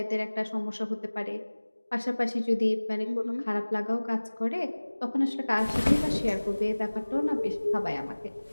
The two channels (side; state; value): both; inverted; correlation -1.00